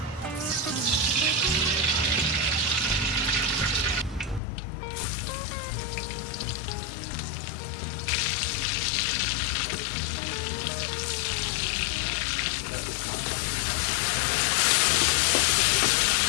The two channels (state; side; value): drops out; right; at 4.4 s